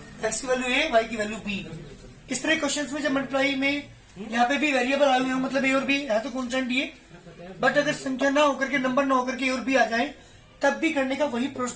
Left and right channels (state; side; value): identical; both; correlation 1.00